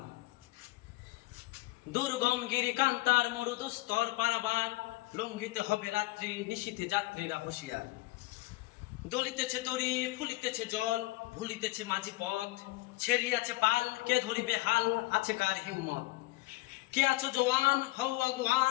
দুর্গম গিরি কান্তার মরুদুস্তর পারাবার, লঙ্ঘিতে হবে রাত্রি নিশীথে যাত্রীরা হুঁশিয়ার। দলিতেছে তরি ফুলিতেছে জল, ভুলিতেছে মাঝি পথ, ছেড়িয়াছে পাল কে ধরিবে হাল, আছে কার হিম্মত। কে আছো জওয়ান হও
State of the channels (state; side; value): quieter; right; 20.9 dB